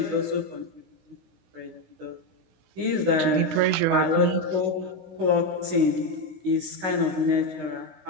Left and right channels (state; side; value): late; left; 16 ms